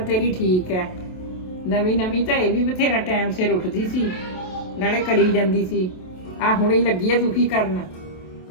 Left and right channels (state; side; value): late; right; 27 ms